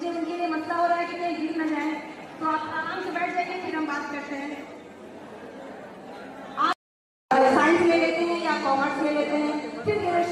उनके लिए मसला हो रहा है कि कहीं गिर न जाए, तो आप आराम से बैठ जाइए, फिर हम बात करते हैं। आप साइंस ले लेते हैं या कॉमर्स ले लेते हैं, फिर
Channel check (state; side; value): identical; both; correlation 1.00